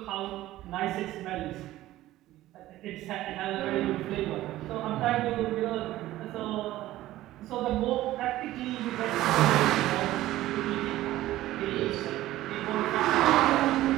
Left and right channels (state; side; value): quieter; left; 15.4 dB